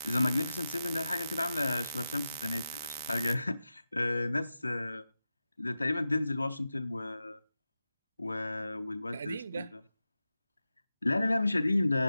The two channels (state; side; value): inverted; both; correlation -0.91